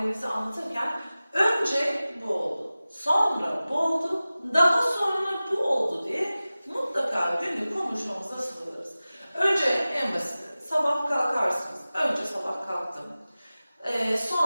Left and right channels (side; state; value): both; inverted; correlation -0.96